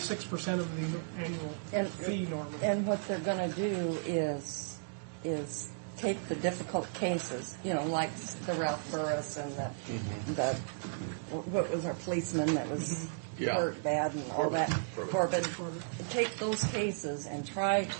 of the annual fee normally. And what they're going to do is take the difficult cases, like the Ralph Burris and the what was our policeman that was Yeah. hurt bad and all that. Corbett. Take those cases and try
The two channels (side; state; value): left; silent; digital silence